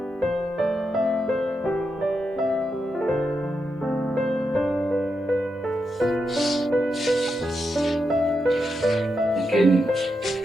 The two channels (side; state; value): both; normal; correlation 0.85